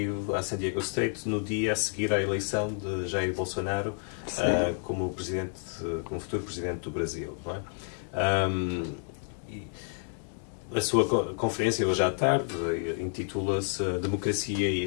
à San Diego State no dia a seguir à eleição de Jair Bolsonaro como futuro presidente do Brasil, não é? A sua conferência hoje à tarde intitula-se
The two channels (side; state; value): right; silent; 58 dB below the other